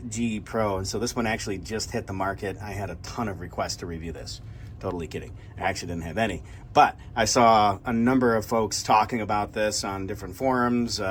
G Pro, and so this one actually just hit the market. I had a ton of requests to review this. Totally kidding. I actually didn't have any, but I saw a number of folks talking about this on different forums,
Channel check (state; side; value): identical; both; correlation 1.00